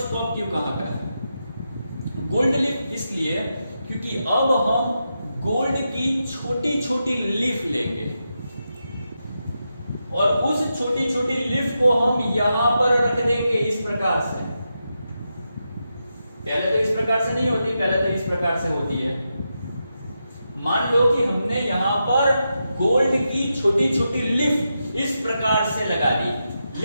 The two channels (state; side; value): inverted; both; correlation -0.87